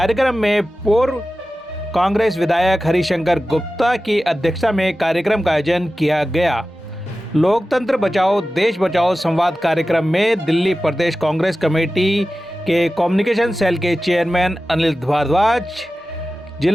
में पूर्व कांग्रेस विधायक हरिशंकर गुप्ता की अध्यक्षता में कार्यक्रम का आयोजन किया गया। लोकतंत्र बचाओ देश बचाओ संवाद कार्यक्रम में दिल्ली प्रदेश कांग्रेस कमेटी के कम्युनिकेशन सेल के चेयरमैन अनिल भारद्वाज,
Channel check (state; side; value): normal; both; correlation 0.95